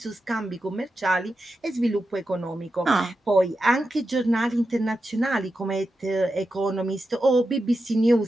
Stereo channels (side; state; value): both; normal; correlation 0.89